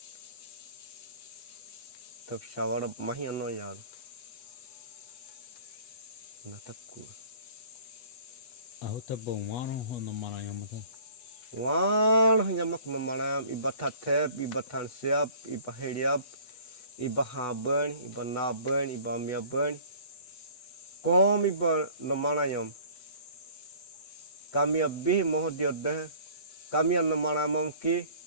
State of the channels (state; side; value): late; right; 8.1 ms